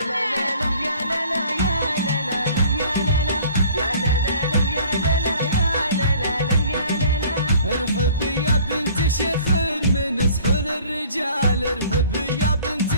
لا لا لا يا لا لا يا لا لا لا يا لا لا يا لا لا لا يا لا لا يا لا لا لا يا لا لا. ارحبي يا بنت شيخ من سحور الرجال، ارحبي يا بنت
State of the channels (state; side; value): inverted; both; correlation -0.51